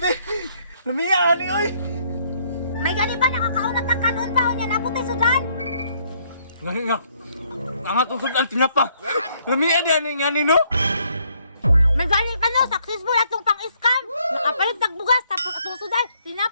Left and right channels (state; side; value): inverted; both; correlation -0.68